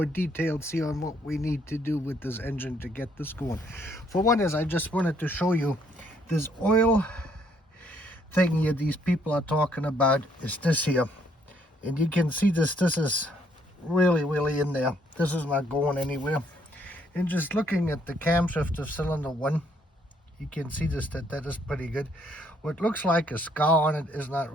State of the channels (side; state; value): both; normal; correlation 0.68